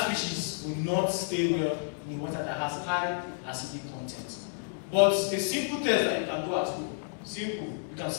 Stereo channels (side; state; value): right; silent; digital silence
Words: will not stay well in the water that has high acidic content. But a simple test that you can do at home, simple, you can